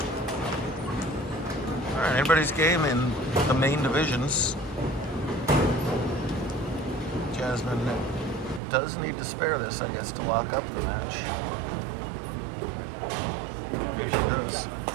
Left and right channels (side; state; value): left; drops out; at 8.6 s